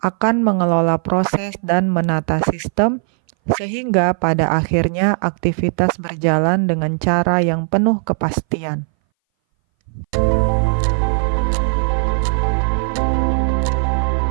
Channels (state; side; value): silent; left; 62 dB below the other